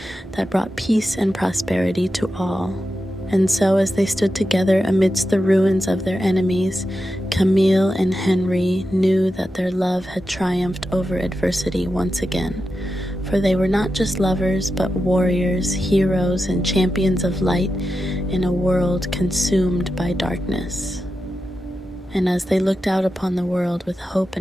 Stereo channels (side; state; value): both; normal; correlation 0.90